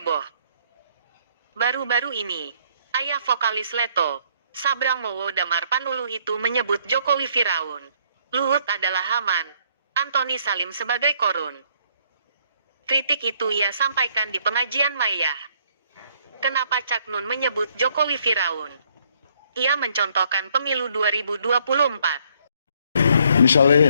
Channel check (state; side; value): inverted; both; correlation -0.67